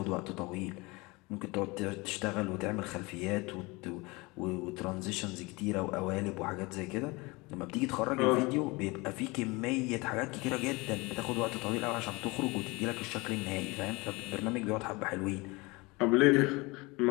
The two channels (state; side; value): quieter; right; 24.6 dB